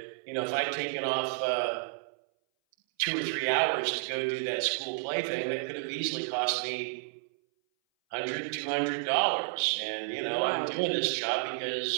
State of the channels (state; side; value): silent; left; 57 dB below the other